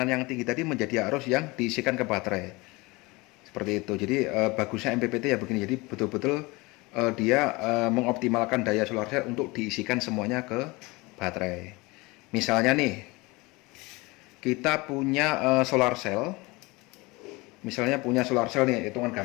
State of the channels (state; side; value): quieter; right; 24.0 dB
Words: yang tinggi tadi menjadi arus yang diisikan ke baterai. Seperti itu. Jadi bagusnya MPPT ya begini. Jadi betul-betul dia mengoptimalkan daya solar cell untuk diisikan semuanya ke baterai. Misalnya nih, kita punya solar cell. Misalnya punya solar cell nih, hitungan